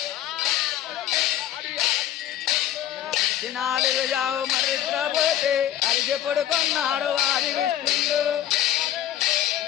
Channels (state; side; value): quieter; right; 12.1 dB